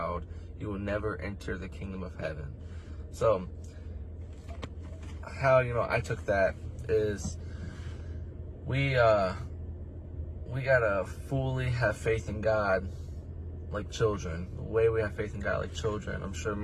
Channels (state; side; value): identical; both; correlation 1.00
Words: you will never enter the kingdom of heaven." So, how, I took that is we gotta fully have faith in God like children. The way we have faith in God like children. I'm sure